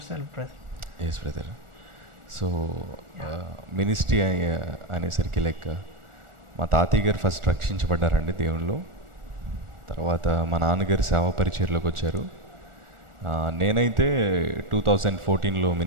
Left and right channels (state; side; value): late; left; 1.4 ms